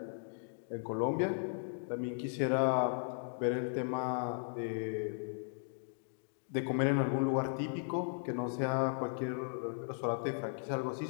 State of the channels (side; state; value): right; silent; digital silence